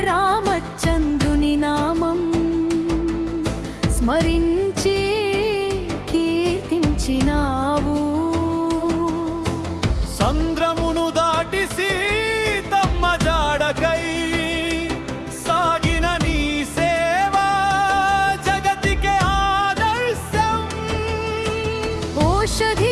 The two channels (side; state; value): both; identical; correlation 1.00